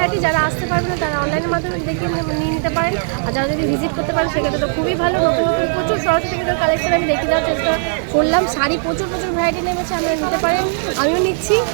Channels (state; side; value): silent; left; 63 dB below the other